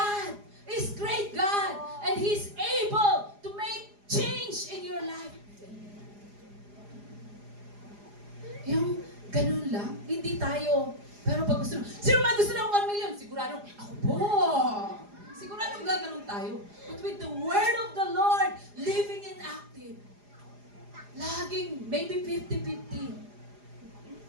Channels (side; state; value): left; late; 4.9 ms